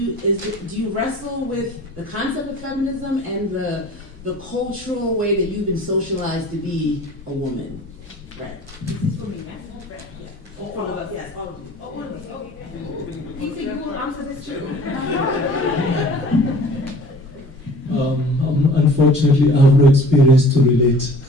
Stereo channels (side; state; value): both; normal; correlation 0.46